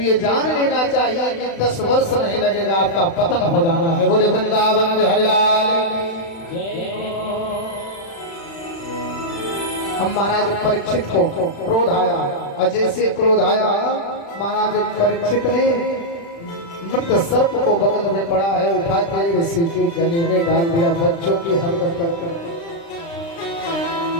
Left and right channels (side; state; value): right; late; 36 ms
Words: जान लेना चाहिए कि 10 वर्ष नहीं लगेगा, आपका पतन हो जाना है। बोले वृंदावन बिहारी लाल। हम महाराज परीक्षित को क्रोध आया, और जैसे क्रोध आया महाराज परीक्षित ने मृत सर्प को बगल में पड़ा है उठा के ऋषि के गले में डाल दिया। बच्चों की हरकत कर